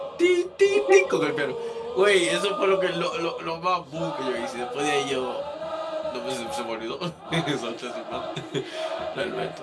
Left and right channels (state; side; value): identical; both; correlation 1.00